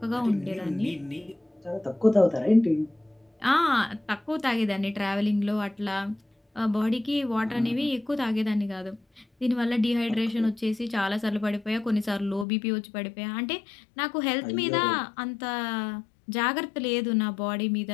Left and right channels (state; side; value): drops out; right; at 12.5 s